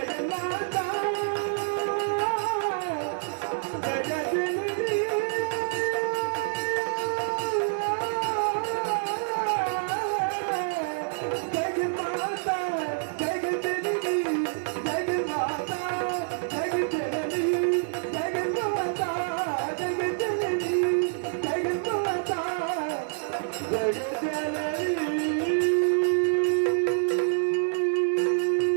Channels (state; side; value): silent; left; 60 dB below the other